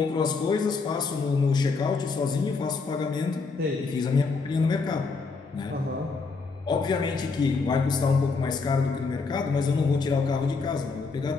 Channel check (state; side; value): quieter; right; 4.4 dB